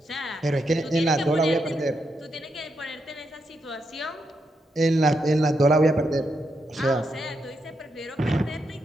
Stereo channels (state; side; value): normal; both; correlation 0.82